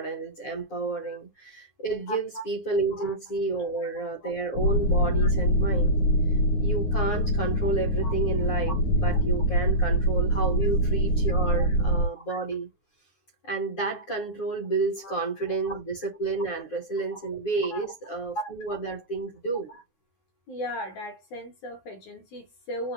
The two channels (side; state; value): right; late; 9.7 ms